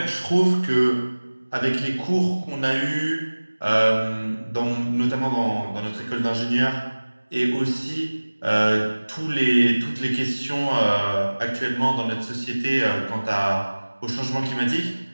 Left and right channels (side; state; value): both; inverted; correlation -1.00